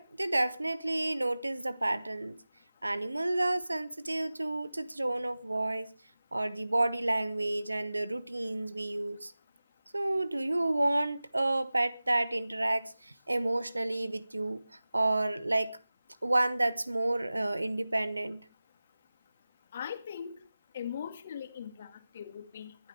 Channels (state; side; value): inverted; both; correlation -0.97